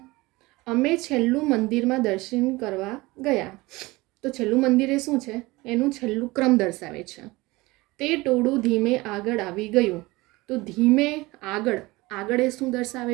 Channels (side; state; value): left; quieter; 21.5 dB